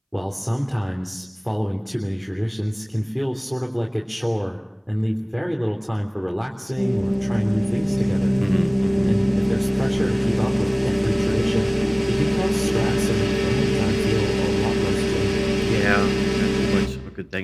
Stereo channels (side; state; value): both; identical; correlation 1.00